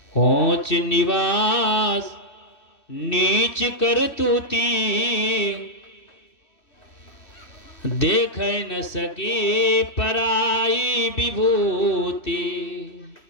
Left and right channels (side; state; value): right; late; 3.1 ms